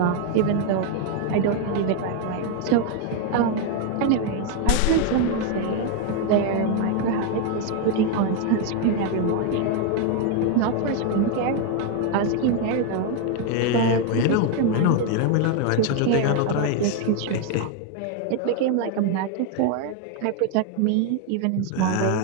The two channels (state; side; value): different; both; correlation 0.01